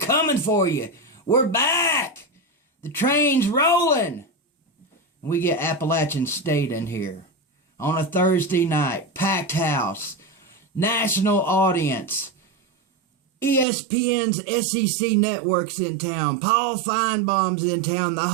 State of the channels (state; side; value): drops out; left; at 13.7 s